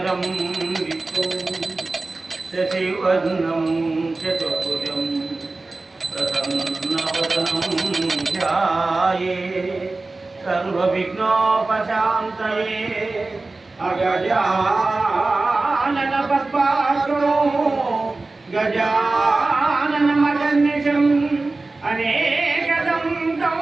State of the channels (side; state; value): left; quieter; 3.4 dB